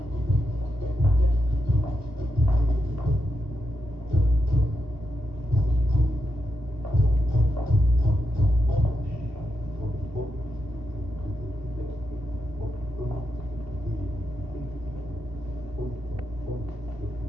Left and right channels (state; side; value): late; left; 2.8 ms